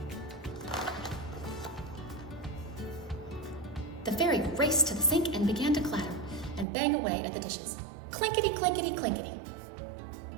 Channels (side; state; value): left; drops out; at 6.7 s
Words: The fairy raced to the sink and began to clatter and bang away at the dishes. Clinkety, clinkety, clinkety.